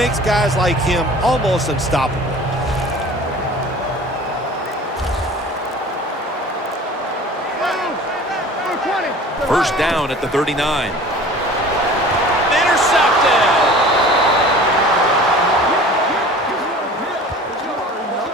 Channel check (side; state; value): both; normal; correlation 0.43